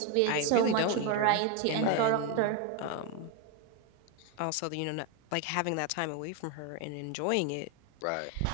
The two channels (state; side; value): different; both; correlation 0.02